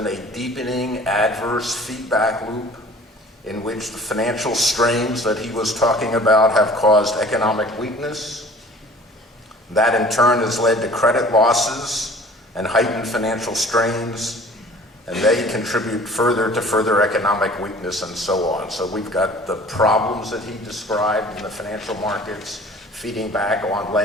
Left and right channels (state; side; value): normal; both; correlation 0.48